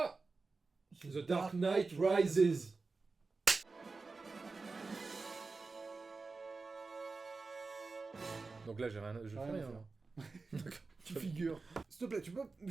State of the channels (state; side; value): quieter; left; 4.0 dB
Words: The Dark Knight Rises. Donc là, je fais Rien à rien. faire. là. Tu figures. S'il te plaît, tu peux